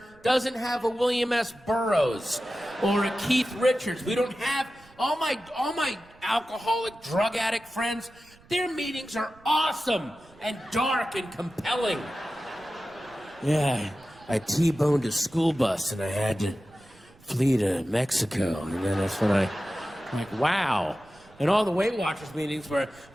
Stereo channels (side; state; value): right; noise; rumble, 27 dB below the sound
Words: doesn't have a William S. Burroughs or a Keith Richards. We don't have all my alcoholic, drug addict friends. Their meetings are awesome and dark and compelling. Yeah, I T-boned a school bus and I had to flee to Mexico. And then that's when I'm like, wow. And all the Weight Watchers meetings were,